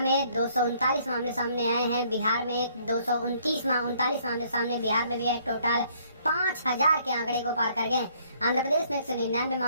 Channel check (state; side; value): inverted; both; correlation -0.64